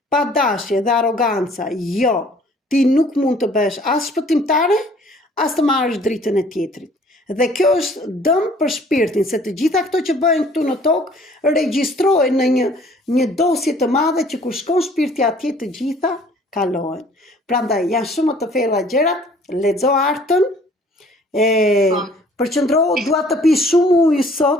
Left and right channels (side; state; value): both; normal; correlation 0.55